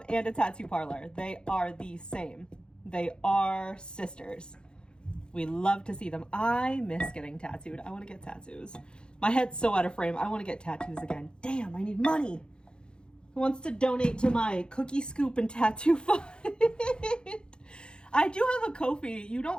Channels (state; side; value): late; right; 0.049 ms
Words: and a tattoo parlor. They are the same. They are sisters. We love to see them. I miss getting tattooed. I want to get tattoos. My head's so out of frame. I want to get tattoos again. Damn, I need money. Who wants to donate to my cookie scoop and tattoo fund? I do have a Ko-fi. You